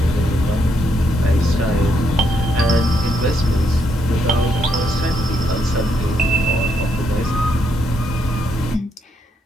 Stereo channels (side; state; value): both; normal; correlation 0.76